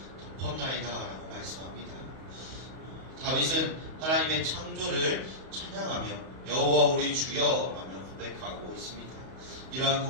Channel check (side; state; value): left; late; 32 ms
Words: 덮었나이다 라고 말씀합니다. 다윗은 하나님의 창조를 찬양하며 여호와 우리 주여 라며 고백하고 있습니다. 이러한